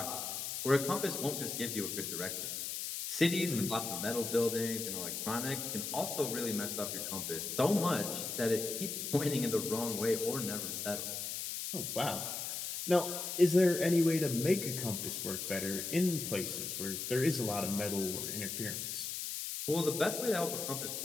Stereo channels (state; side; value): noise; left; hiss, 4 dB below the sound